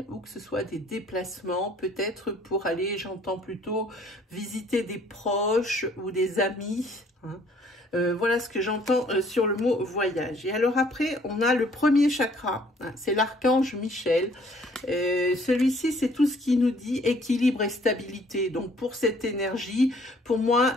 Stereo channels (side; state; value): both; normal; correlation 0.60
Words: ou que ce soit des déplacements peut-être pour aller, j'entends plutôt, visiter des proches ou des amis. Hein. Voilà ce que j'entends sur le mot voyage. Et alors après, on a le premier chakra, hein, c'est l'archange Michel. Celui-ci, c'est tout ce qui nous dit équilibre et stabilité. Donc pour cette énergie, pour